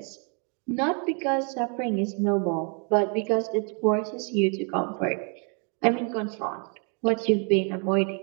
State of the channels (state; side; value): quieter; left; 38.0 dB